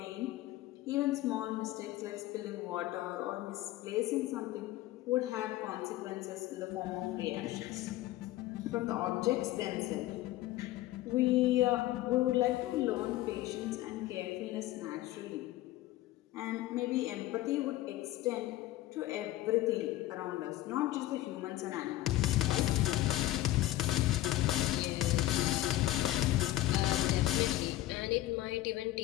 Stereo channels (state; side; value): quieter; right; 15.7 dB